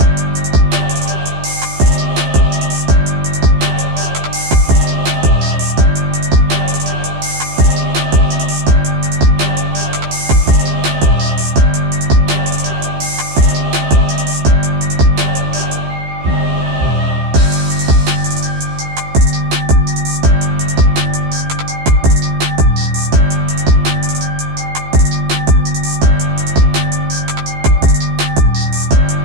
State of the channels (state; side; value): late; left; 15 ms